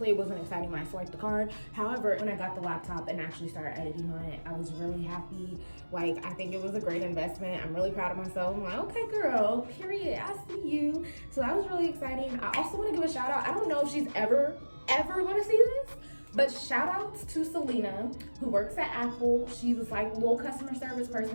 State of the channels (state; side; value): inverted; both; correlation -1.00